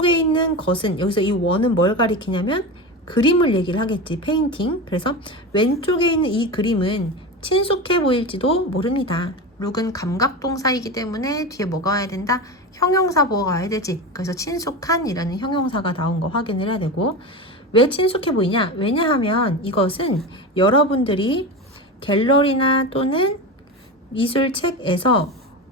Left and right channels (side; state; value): both; normal; correlation 0.23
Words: 있는 것은, 여기서 이 one은 뭘 가리키냐면 그림을 얘기를 하겠지. 페인팅. 그래서 왼쪽에 있는 이 그림은 친숙해 보일지도 모릅니다. 룩은 감각동사이기 때문에 뒤에 뭐가 와야 된다? 형용사 보어가 와야 되지. 그래서 친숙한이라는 형용사가 나온 거 확인을 해야 되고, 왜 친숙해 보이냐? 왜냐하면 이것은 여러분들이 갤러리나 또는 미술책에서